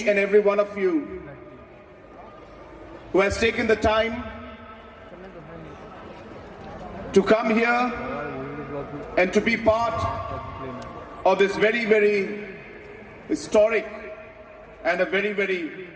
and every one of you who has taken the time to come here and to be part of this very, very historic and a very, very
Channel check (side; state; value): both; identical; correlation 1.00